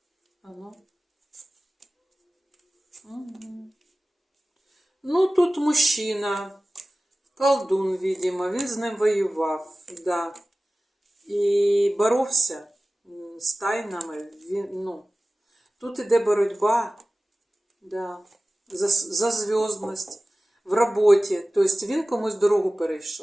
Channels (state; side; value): normal; both; correlation 0.97